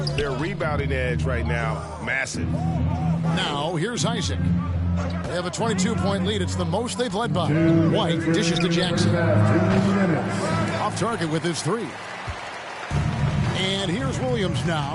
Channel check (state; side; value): identical; both; correlation 1.00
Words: Their rebounding edge right now, massive. Now, here's Isaac. They have a 22-point lead. It's the most they've led by. White dishes to Jackson. Off target with his three. And here's Williams